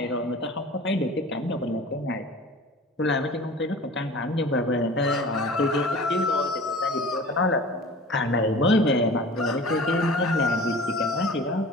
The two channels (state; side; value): normal; both; correlation 0.41